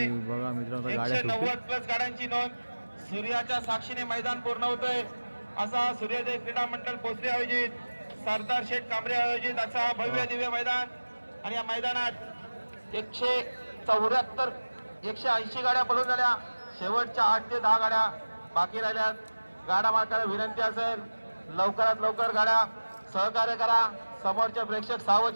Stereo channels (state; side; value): inverted; both; correlation -1.00